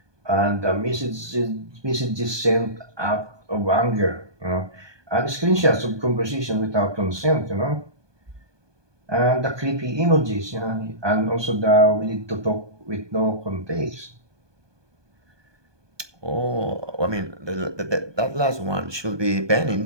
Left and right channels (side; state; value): left; late; 1.2 ms